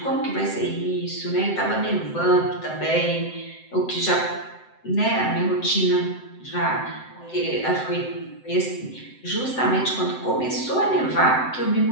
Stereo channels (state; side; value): late; right; 7.8 ms